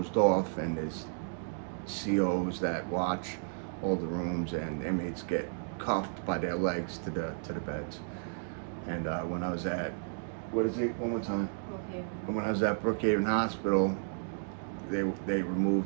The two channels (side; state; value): left; silent; digital silence